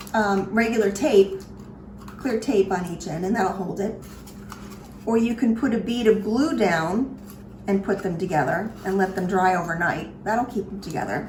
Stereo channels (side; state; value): both; identical; correlation 1.00